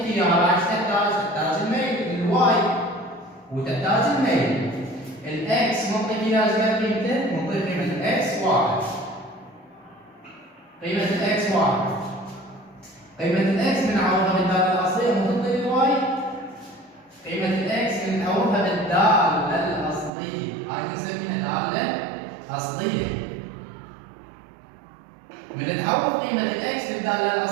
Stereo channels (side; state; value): left; drops out; at 20.1 s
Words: اياها، راح تحتاج الميل الواي وتحتاج الميل. الاكس معطيك اياها قيمته، معطيك قيمه الاكس واحد. قيمه الاكس واحد. قيمه الاكس بنعوضها بالداله الاصليه وتعطي الواي. قيمه الاكس بنعوضها بالداله الاصليه، هاي بنسميها داله اصليه. من نعوض قيمه الاكس بالداله